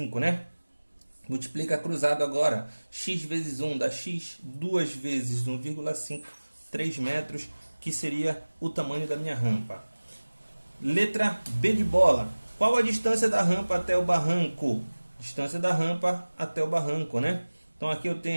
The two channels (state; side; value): inverted; both; correlation -1.00